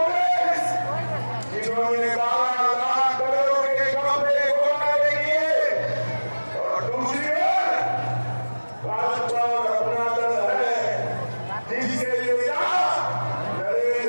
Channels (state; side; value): inverted; both; correlation -1.00